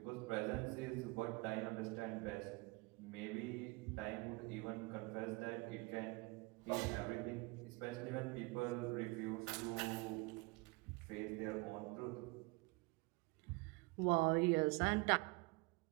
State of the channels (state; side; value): quieter; left; 26.5 dB